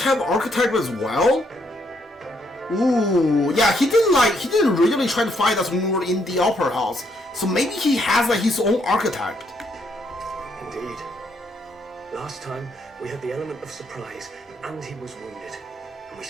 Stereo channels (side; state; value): both; normal; correlation 0.73